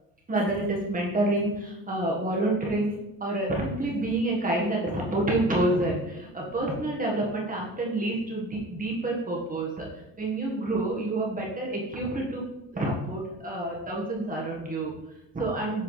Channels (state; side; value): normal; both; correlation 0.39